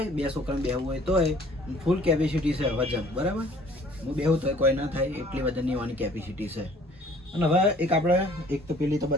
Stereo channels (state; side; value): normal; both; correlation 0.55